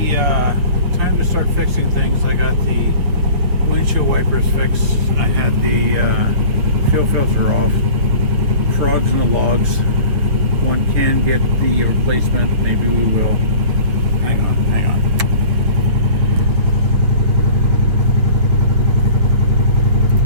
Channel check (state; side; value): late; left; 7.4 ms